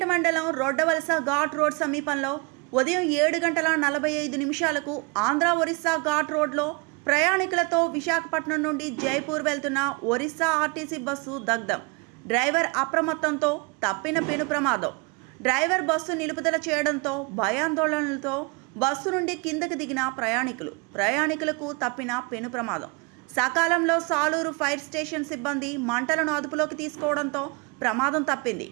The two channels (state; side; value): quieter; left; 29.9 dB